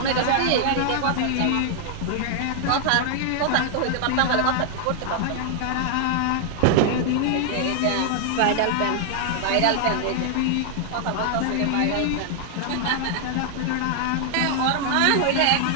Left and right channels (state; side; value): different; both; correlation 0.00